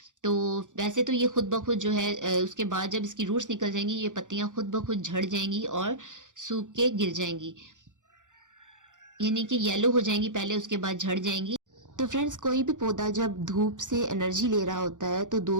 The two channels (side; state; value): left; late; 0.86 ms